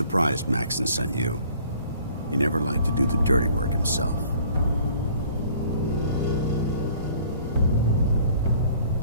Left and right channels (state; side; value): inverted; both; correlation -0.55